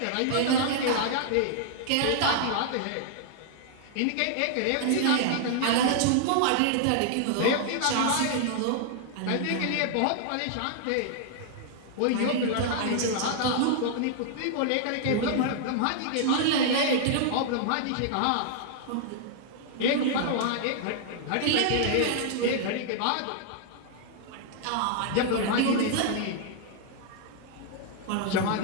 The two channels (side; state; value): both; different; correlation -0.01